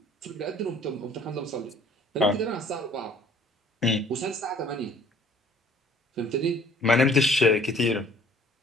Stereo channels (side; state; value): both; normal; correlation 0.55